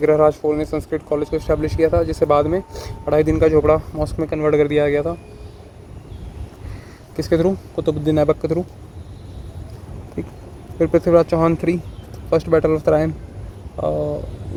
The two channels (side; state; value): both; identical; correlation 1.00